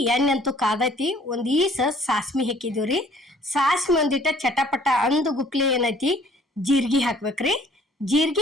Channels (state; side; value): normal; both; correlation 0.57